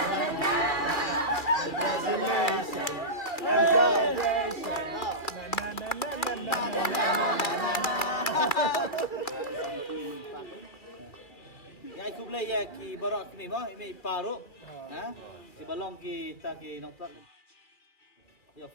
Ya aku play ya ki barak ni mah ini paru. Ha? Ki balong ki ta ki nong plak. Ya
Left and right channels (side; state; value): right; late; 2.2 ms